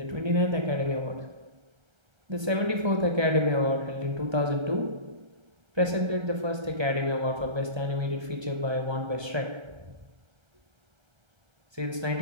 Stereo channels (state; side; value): late; left; 1.3 ms